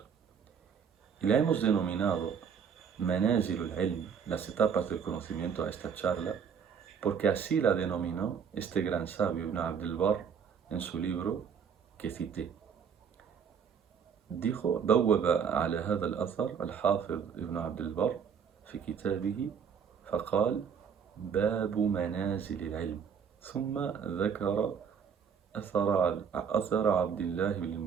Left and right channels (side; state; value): left; quieter; 7.0 dB